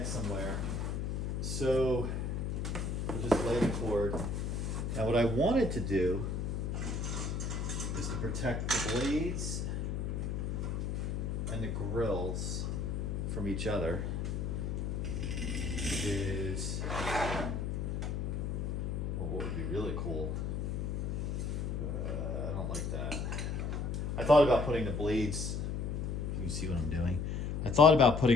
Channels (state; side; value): noise; left; hum, 1 dB below the sound